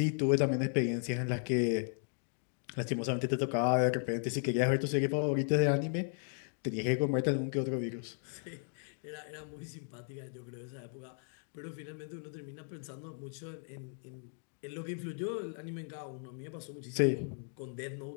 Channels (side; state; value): right; silent; 54 dB below the other